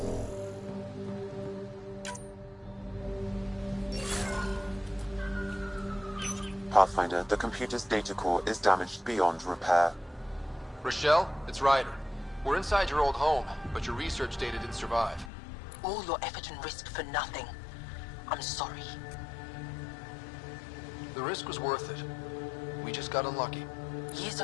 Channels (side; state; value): right; drops out; at 15.3 s